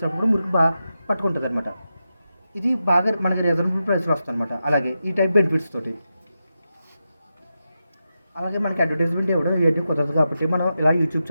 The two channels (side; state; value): both; inverted; correlation -0.89